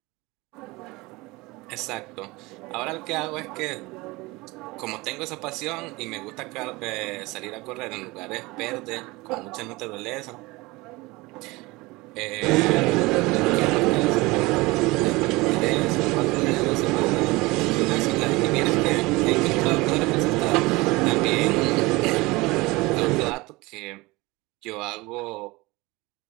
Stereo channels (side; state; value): left; quieter; 22.6 dB